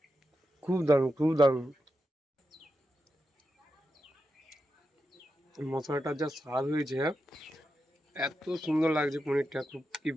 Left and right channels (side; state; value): both; normal; correlation 0.88